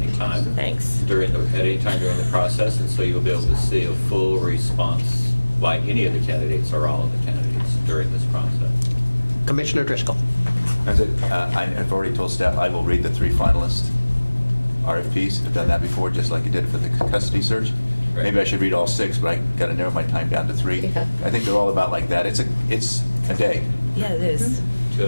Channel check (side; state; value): both; inverted; correlation -1.00